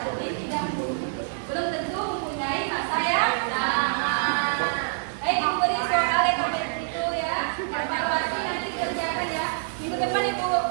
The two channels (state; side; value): silent; left; 61 dB below the other